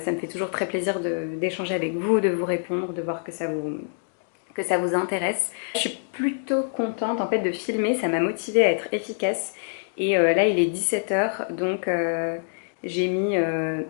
me fait toujours très plaisir d'échanger avec vous, de vous répondre, de voir que ça vous intéresse. Je suis plutôt contente en fait de filmer, ça m'a motivée à être efficace. Et là il est 17h, donc j'ai mis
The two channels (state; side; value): silent; right; digital silence